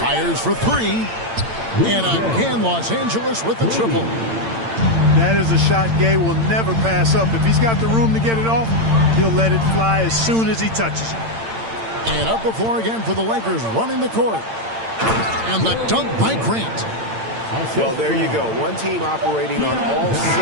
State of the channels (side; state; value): left; late; 8.8 ms